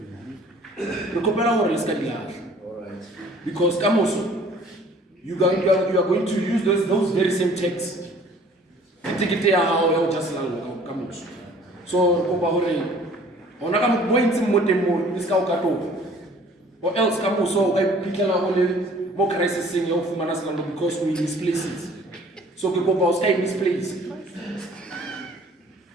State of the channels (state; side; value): normal; both; correlation 0.53